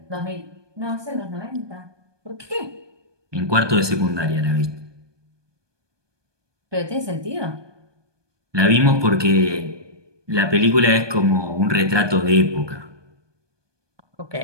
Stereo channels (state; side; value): late; left; 1.2 ms